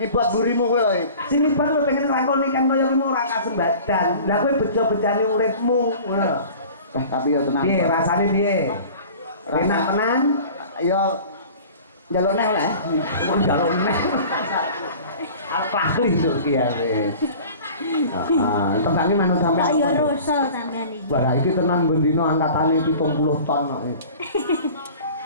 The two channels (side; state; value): both; inverted; correlation -0.42